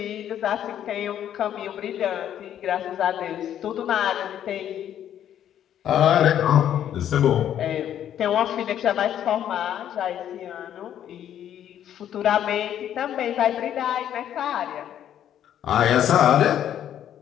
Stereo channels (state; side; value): quieter; right; 10.4 dB